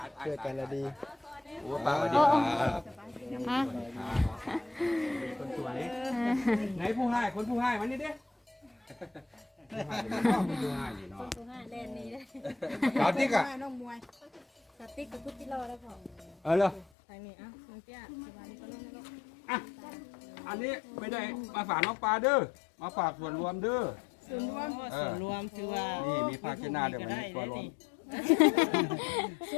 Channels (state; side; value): drops out; right; at 16.9 s